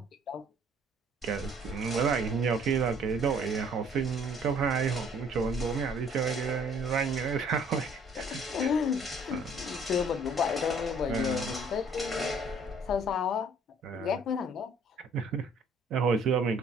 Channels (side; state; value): both; normal; correlation 0.58